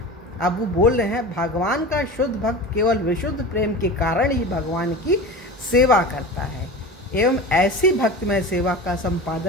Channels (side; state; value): both; normal; correlation 0.32